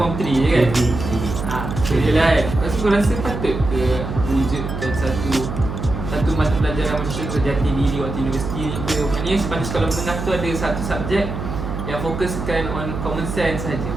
3 je kan? So je lah kan. Lepas tu kau rasa patut ke wujudkan satu mata pelajaran macam contoh jati diri waktu universiti ni ke? Maknanya pada sekolah menengah tu ada satu subjek yang fokuskan on common sense saja.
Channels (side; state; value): right; noise; hum, 5 dB below the sound